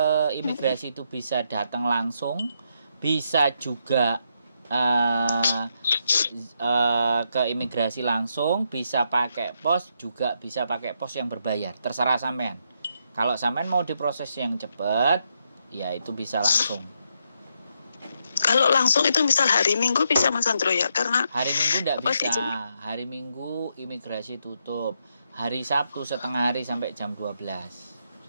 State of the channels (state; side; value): inverted; both; correlation -0.79